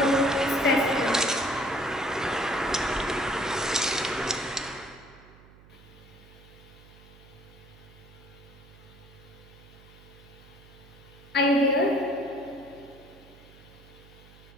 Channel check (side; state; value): right; noise; hum, 22 dB below the sound